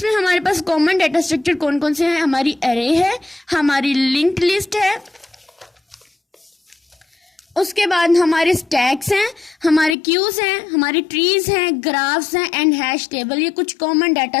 हमारे पास कॉमन डाटा स्ट्रक्चर कौन कौन से हैं, हमारी एरे है, हमारी लिंक्ड लिस्ट है, उसके बाद हमारे स्टैक्स हैं, हमारे क्यूज हैं, हमारी ट्रीज हैं, ग्राफ्स हैं एंड हैश टेबल। ये कुछ कॉमन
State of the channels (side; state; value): right; drops out; at 10.0 s